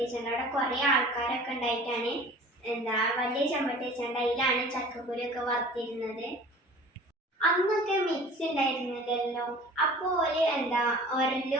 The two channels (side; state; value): both; normal; correlation 0.44